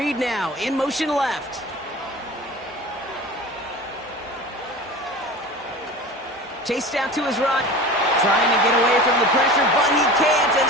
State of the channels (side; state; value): both; normal; correlation 0.35